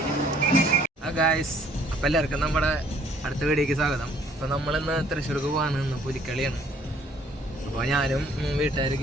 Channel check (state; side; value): normal; both; correlation 0.61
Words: ഗായ്സ്, അപ്പം എല്ലാവർക്കും നമ്മുടെ അടുത്ത വീഡിയോക്ക് സ്വാഗതം. അപ്പം നമ്മളിന്ന് തൃശ്ശൂർക്ക് പോകാണ്. ഇന്ന് പുലിക്കളിയാണ്. അപ്പോൾ ഞാനും